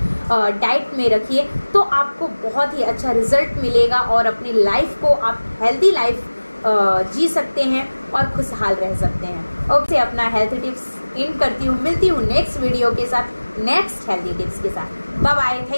डाइट में रखिए तो आपको बहुत ही अच्छा रिजल्ट मिलेगा और अपनी लाइफ को आप हेल्दी लाइफ जी सकते हैं और खुशहाल रह सकते हैं। ओके, अपना हेल्थ टिप्स इन करती हूँ। मिलती हूँ नेक्स्ट वीडियो के साथ, नेक्स्ट हेल्दी टिप्स के साथ। Bye bye,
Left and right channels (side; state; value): both; inverted; correlation -1.00